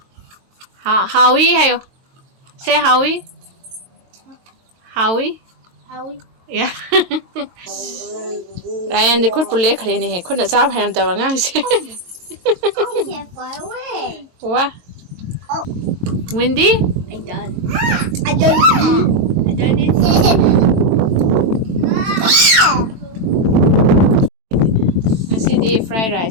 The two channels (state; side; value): late; left; 22 ms